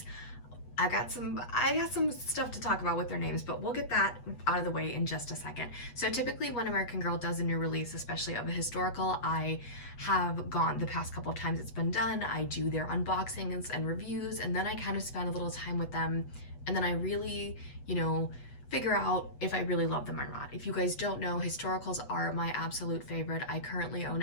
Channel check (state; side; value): late; right; 8.2 ms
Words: I got some stuff to talk about with their names, but we'll get that out of the way in just a second. So typically when American Girl does a new release, especially of a historical, I have gone the past couple of times it's been done, I do their unboxings and reviews, and then I kind of spend a little time with them, and then I really, figure out if I really love them or not. If you guys don't know, historicals are my absolute favorite. I currently